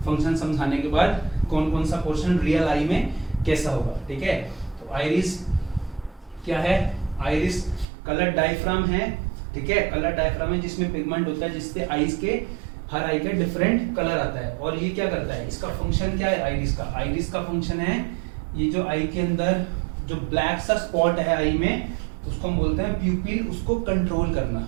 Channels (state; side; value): drops out; left; at 7.9 s